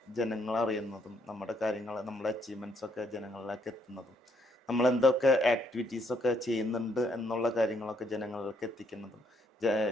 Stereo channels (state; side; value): normal; both; correlation 0.71